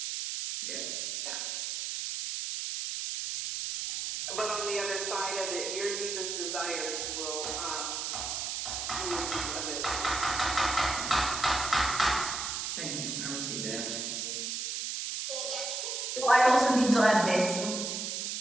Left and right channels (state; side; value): noise; right; hiss, 3 dB below the sound